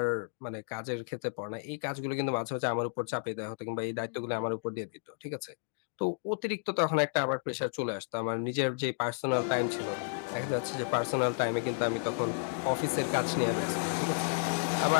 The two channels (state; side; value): silent; right; digital silence